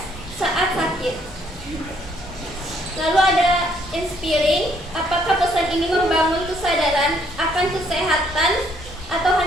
saat sakit? Lalu ada inspiring. Apakah pesan ini membangun kesadaran akan kesehatan atau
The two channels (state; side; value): normal; both; correlation 0.67